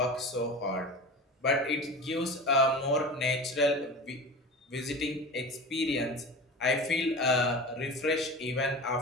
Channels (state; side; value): normal; both; correlation 0.33